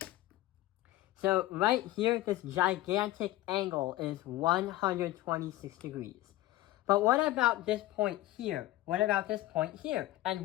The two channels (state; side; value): quieter; right; 16.8 dB